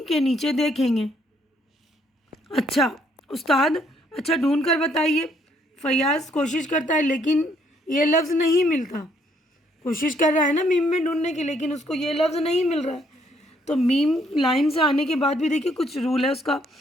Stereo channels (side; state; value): both; normal; correlation 0.68